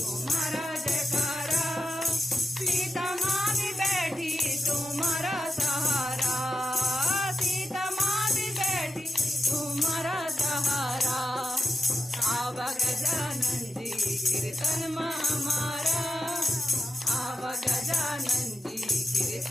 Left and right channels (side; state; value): both; normal; correlation 0.89